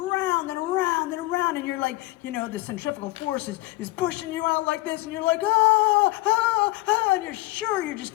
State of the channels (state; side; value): quieter; right; 19.4 dB